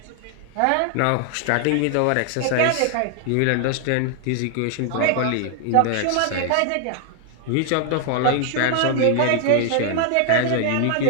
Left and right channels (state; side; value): different; both; correlation 0.00